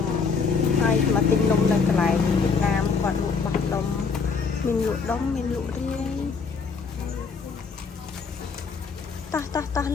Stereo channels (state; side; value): quieter; right; 5.2 dB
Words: ំហើយមកទិញនំនៅកន្លែងវៀតណាមគាត់លក់បោះដុំមានលក់ដុំមានលក់រាយតោះ